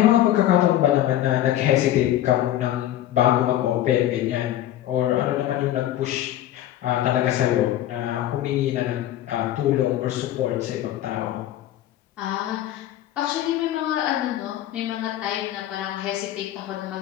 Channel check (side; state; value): right; quieter; 12.9 dB